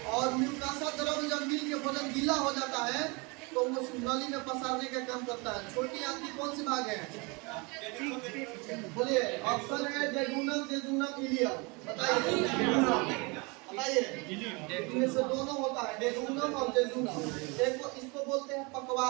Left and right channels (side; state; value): left; quieter; 28.6 dB